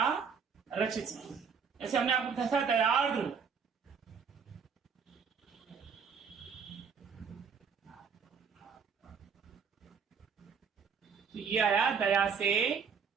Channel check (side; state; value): left; quieter; 6.2 dB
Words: रचित। ऐसे हमने आपको बताया था दयार्द्र। तो ये आया दया से